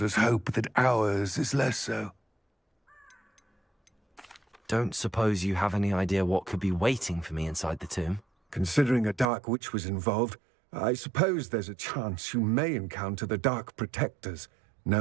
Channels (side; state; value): left; drops out; at 9.2 s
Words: us hope that ours is less so. Don't suppose you have any idea what could be waiting for me inside the tomb? Considering a dark witch was involved, I suppose there's a chance you may encounter the Dark Protectors,